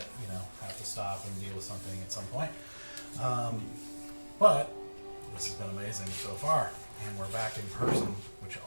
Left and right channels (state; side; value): inverted; both; correlation -1.00